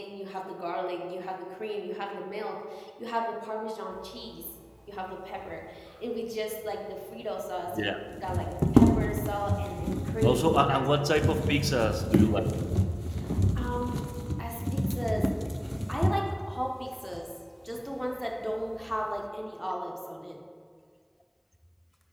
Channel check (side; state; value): both; identical; correlation 1.00